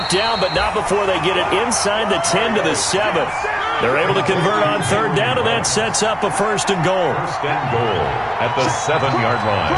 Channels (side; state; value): both; identical; correlation 1.00